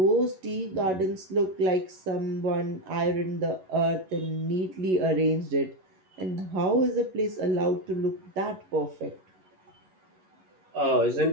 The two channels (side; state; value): left; late; 11 ms